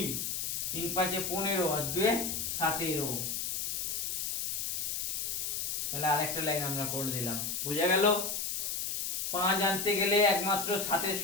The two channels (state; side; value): noise; left; hiss, 1 dB below the sound